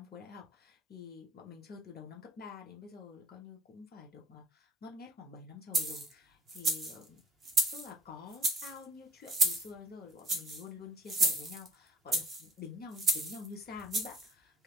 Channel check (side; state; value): both; normal; correlation 0.48